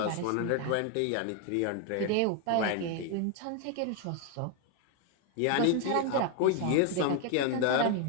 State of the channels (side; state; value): both; different; correlation 0.01